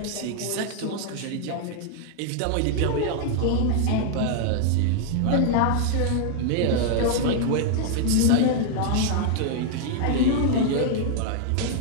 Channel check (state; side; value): different; both; correlation 0.00